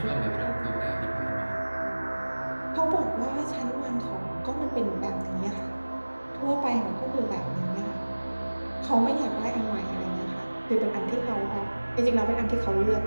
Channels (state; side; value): inverted; both; correlation -1.00